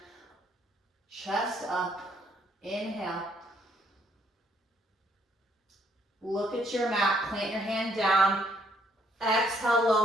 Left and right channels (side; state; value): both; normal; correlation 0.68